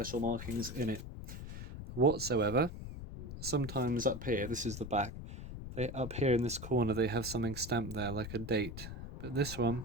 markings in it whatsoever. Sometimes up here, this is the back, up here in this corner they have something stamped there like a date, but this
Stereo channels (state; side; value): noise; left; rumble, 9 dB below the sound